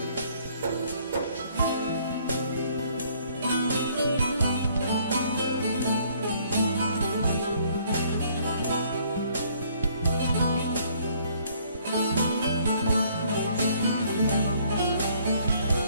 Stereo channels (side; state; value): both; inverted; correlation -0.62